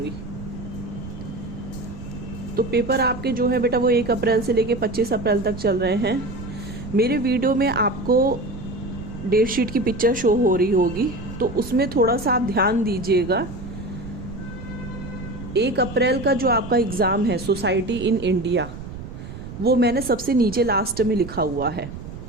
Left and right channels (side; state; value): right; noise; rumble, 11 dB below the sound